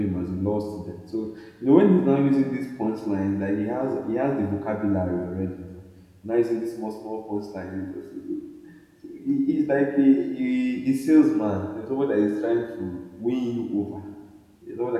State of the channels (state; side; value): identical; both; correlation 1.00